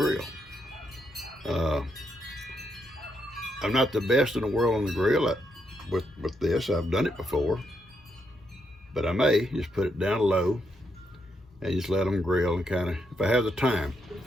I'm not the best in the world on the grill with this. I've done it before, but I may just put it down low and just let them grill and kind of, if I have the time.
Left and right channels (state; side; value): normal; both; correlation 0.79